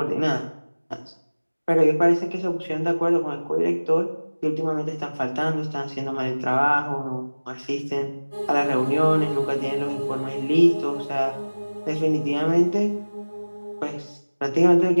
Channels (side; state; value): both; inverted; correlation -1.00